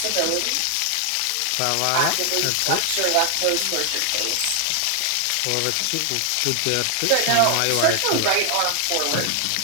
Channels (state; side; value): different; both; correlation 0.00